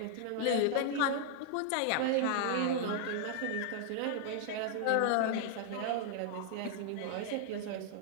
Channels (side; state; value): both; different; correlation 0.00